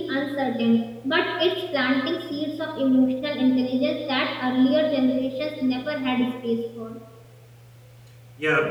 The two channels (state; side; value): identical; both; correlation 1.00